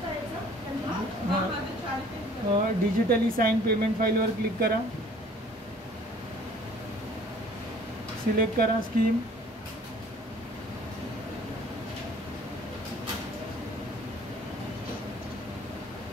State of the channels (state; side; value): normal; both; correlation 0.53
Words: डिजिटली साइन पेमेंट फाईलवर क्लिक करा. सिलेक्ट करा स्कीम.